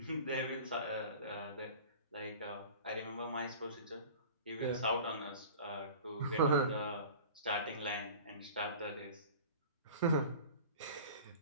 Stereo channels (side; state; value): both; inverted; correlation -0.40